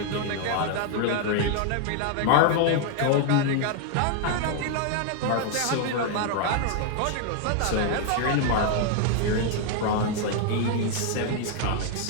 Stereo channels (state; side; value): different; both; correlation 0.00